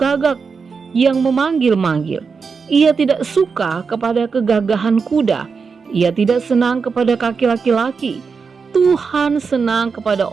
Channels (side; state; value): left; quieter; 5.3 dB